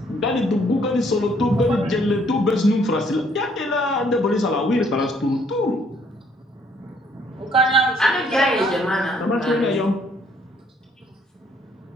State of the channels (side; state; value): both; normal; correlation 0.65